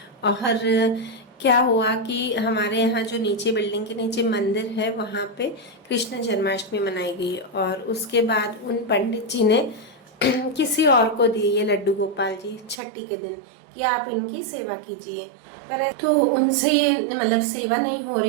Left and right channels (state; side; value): drops out; left; at 12.8 s